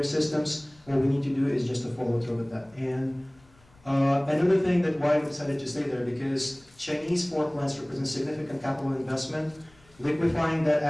systems. What we need to do is just to follow through with that. And another thing that why we decided to stay there, because Chinese fork plants represent significant capital investment. Liquefying that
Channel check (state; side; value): noise; left; rumble, 29 dB below the sound